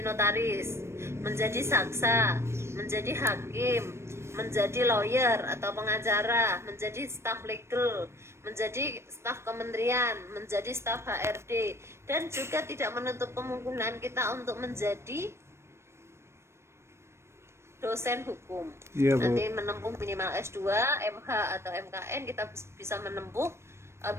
menjadi saksa, menjadi hakim, menjadi lawyer atau pengacara, menjadi staf legal, menjadi staf kementerian, menjadi staf HRD, dan juga tidak menutup kemungkinan kita untuk menjadi dosen hukum. Iya, Bu. Nanti menempuh minimal S2, MH atau MKN, kita bisa menempuh,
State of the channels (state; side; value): late; left; 0.13 ms